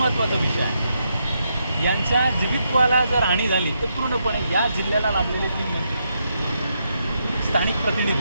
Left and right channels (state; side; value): inverted; both; correlation -0.80